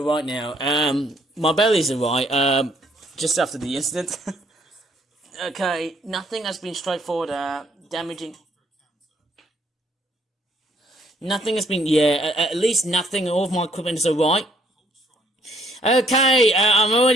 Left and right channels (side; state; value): both; normal; correlation 0.66